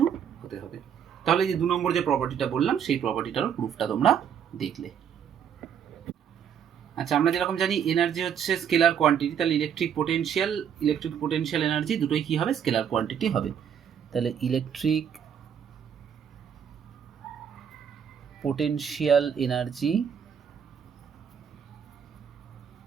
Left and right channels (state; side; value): quieter; left; 8.2 dB